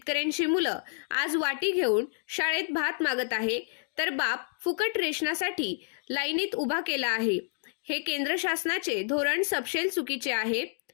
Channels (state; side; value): silent; right; digital silence